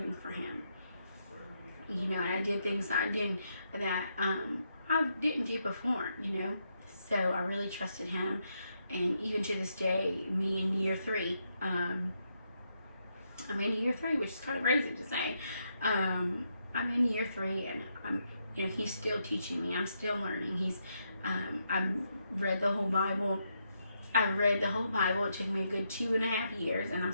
for him. You know, and I did things that I didn't do before, you know. So I really trusted him. And even to this day, me in year 3, I'm in year 3, which is kind of crazy to say. I'm in year 3, and you know, he's still teaching me. I'm still learning. I've read the whole Bible. I've read the whole Bible. It took me a good 2.5 years, and I'm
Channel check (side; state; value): both; inverted; correlation -0.80